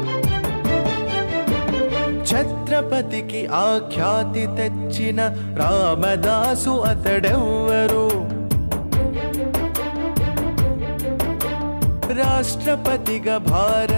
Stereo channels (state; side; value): inverted; both; correlation -1.00